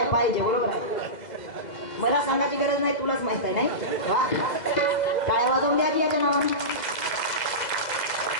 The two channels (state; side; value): late; right; 2.0 ms